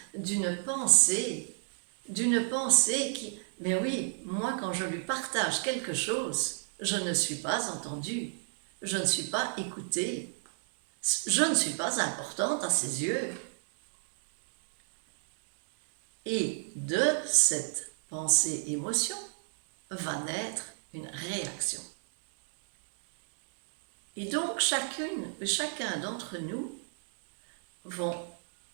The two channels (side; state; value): left; silent; digital silence